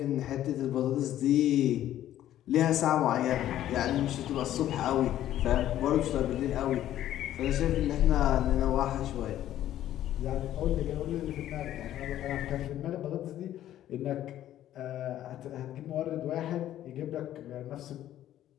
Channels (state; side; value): quieter; right; 12.5 dB